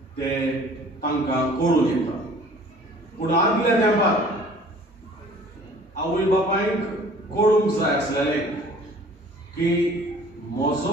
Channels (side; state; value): both; normal; correlation 0.50